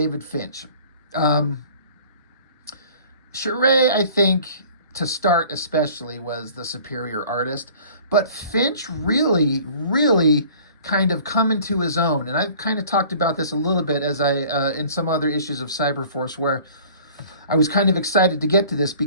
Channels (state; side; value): inverted; both; correlation -0.49